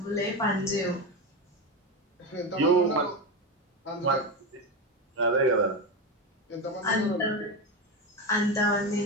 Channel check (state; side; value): normal; both; correlation 0.17